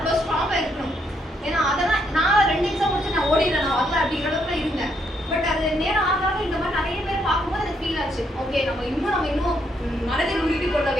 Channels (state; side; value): normal; both; correlation 0.74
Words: ஸ்ட்ராங்காக இருக்கணும். ஏன்னா அதெல்லாம் நான் 2 எக்ஸாம் முடிச்சு நான் ஓடிடுறேன், நான் வரல அப்படிங்கிற அளவுக்கு இருந்தேன். பட் அது நேரம் ஆகாத இந்த மாதிரி நிறைய பேர் பார்க்கும்போது எனக்கு ஃபீல் ஆச்சு, ஓகே நம்ம இன்னும் மனதில் உறுதி கொள்ள